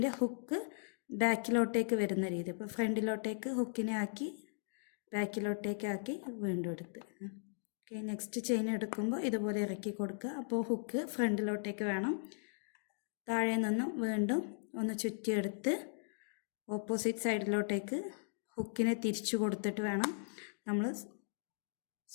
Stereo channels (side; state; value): right; silent; digital silence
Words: ഹുക്ക് ബാക്കിലോട്ടേക്ക് വരുന്ന രീതി, ഇപ്പോൾ ഫ്രണ്ടിലോട്ടേക്ക് ഹുക്കിനെ ആക്കി ബാക്കിലോട്ടേക്ക് ആക്കി വീണ്ടും എടുത്ത്. ഓക്കെ, നെക്സ്റ്റ് ചെയിൻ എടുക്കുമ്പോൾ ഇതുപോലെ ഇറക്കി കൊടുക്കുക. അപ്പോൾ ഹുക്ക് ഫ്രണ്ടിലോട്ടേക്ക് വേണം. താഴെ നിന്നും വീണ്ടും ഒന്ന് ചുറ്റിയെടുത്ത് ഓപ്പോസിറ്റ് സൈഡിലോട്ടേക്ക് ഹുക്കിനെ തിരിച്ചു കൊടുത്തിട്ട് വേണം നമ്മൾ